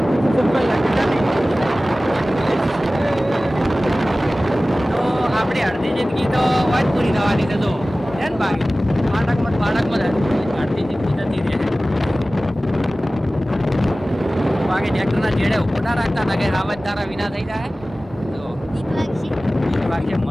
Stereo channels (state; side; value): normal; both; correlation 0.97